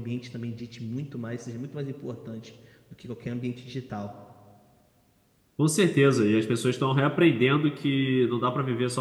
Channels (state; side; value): identical; both; correlation 1.00